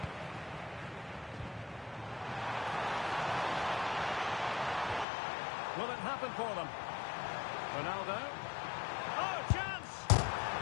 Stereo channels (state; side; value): drops out; right; at 5.1 s